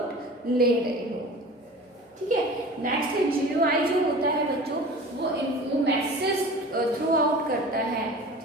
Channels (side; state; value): both; normal; correlation 0.39